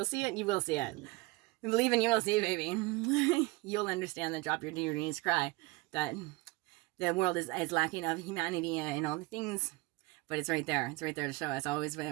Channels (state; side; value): quieter; left; 22.3 dB